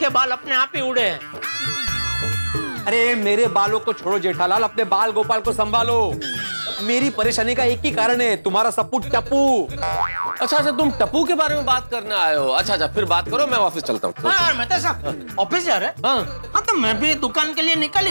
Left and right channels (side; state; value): both; inverted; correlation -1.00